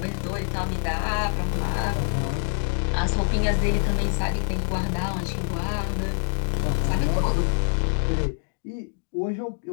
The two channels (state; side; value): silent; right; digital silence